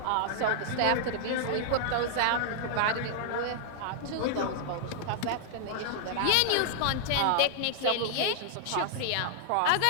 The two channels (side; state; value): both; different; correlation -0.01